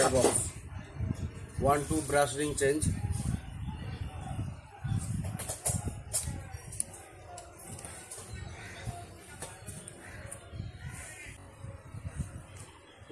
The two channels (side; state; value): both; identical; correlation 1.00